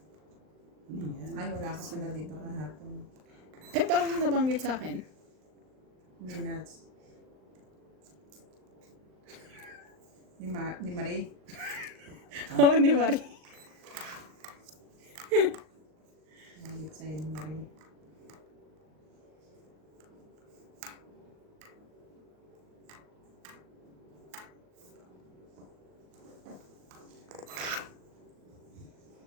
Ano yan? Ay, wala ka pala dito kahapon. Eh, parang nabanggit sa akin. Minutes. Ni Marie. Oo, ni Marie. Nangit sa'yo ni Marie.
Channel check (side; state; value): left; late; 39 ms